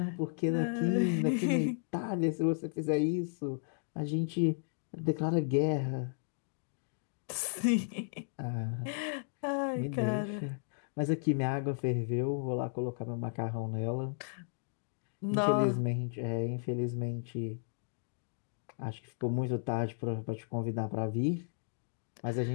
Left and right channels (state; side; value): silent; right; digital silence